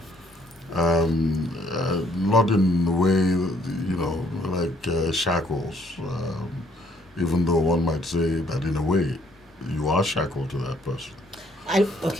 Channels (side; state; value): both; normal; correlation 0.65